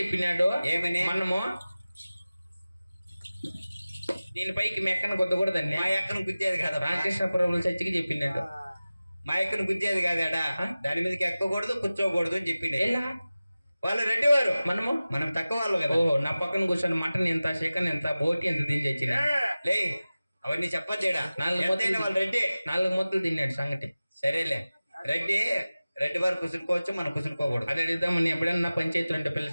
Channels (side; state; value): both; inverted; correlation -0.97